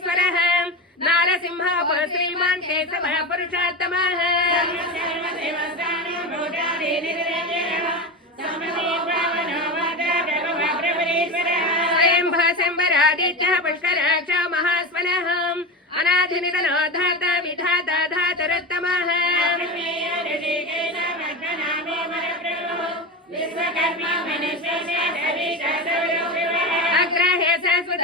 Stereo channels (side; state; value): both; normal; correlation 0.22